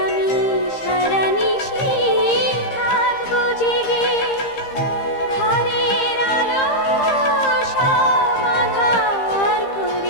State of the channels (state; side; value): late; right; 15 ms